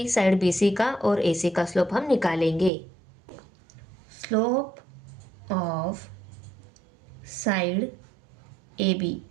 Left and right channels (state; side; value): drops out; left; at 2.7 s